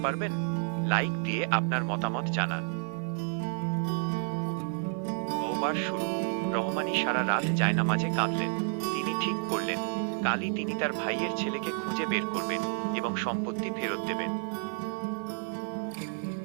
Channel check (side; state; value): left; silent; 58 dB below the other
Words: পারবেন? লাইক দিয়ে আপনার মতামত জানান। তওবার শুরু। রহমানী সারা রাত জায়নামাজে কাঁদলেন। তিনি ঠিক করলেন কালই তিনি তার ভাইয়ের ছেলেকে খুঁজে বের করবেন এবং সম্পত্তি ফেরত দেবেন।